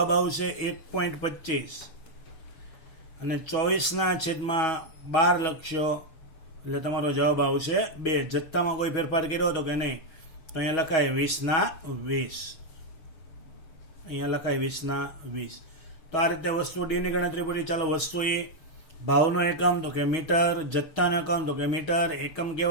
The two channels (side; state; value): right; late; 6.3 ms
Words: આવશે 1.25 અને 24 છેદમાં 12 લખશો એટલે તમારો જવાબ આવશે 2. જથ્થામાં કોઈ ફેરફાર કર્યો તો કે નહીં, તો અહીંયા લખાય 20/20. અહીંયા લખાય 20/20. તો આ રીતે વસ્તુ ડી ની ગણતરી પૂરી. ચાલો વસ્તુ એ, ભાવનો એકમ તો કે મીટર, જથ્થાનો એકમ તો કે મીટર, એકમ